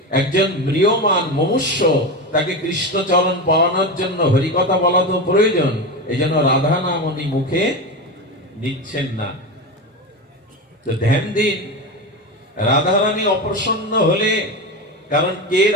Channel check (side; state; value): both; normal; correlation 0.20